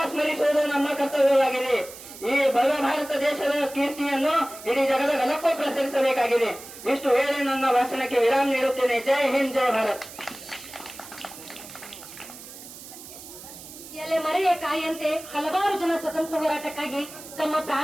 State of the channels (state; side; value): noise; right; hiss, 15 dB below the sound